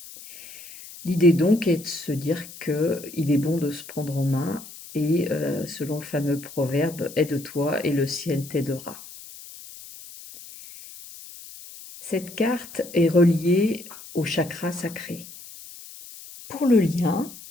L'idée donc est de se dire qu'il est bon de se prendre en main et selon le fameux proverbe « Aide-toi et le ciel t'aidera ». Cette carte est reliée au chakra sacré. Pour le lien,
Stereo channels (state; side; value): noise; left; hiss, 16 dB below the sound